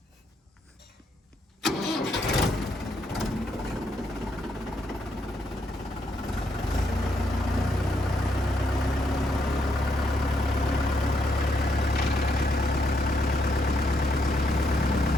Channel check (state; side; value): normal; both; correlation 0.77